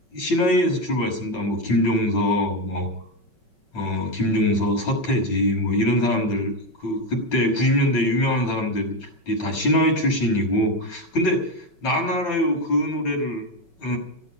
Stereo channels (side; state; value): right; late; 5.3 ms